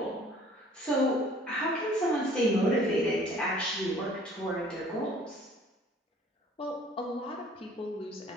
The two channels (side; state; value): both; normal; correlation 0.54